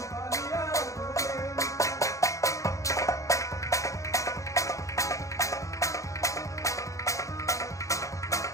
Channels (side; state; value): right; late; 0.15 ms